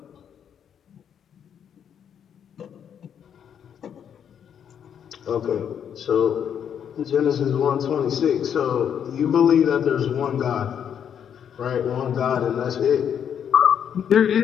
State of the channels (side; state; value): right; quieter; 8.5 dB